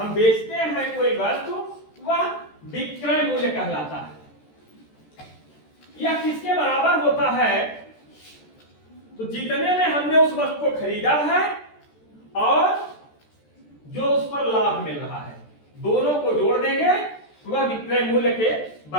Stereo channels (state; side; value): late; right; 14 ms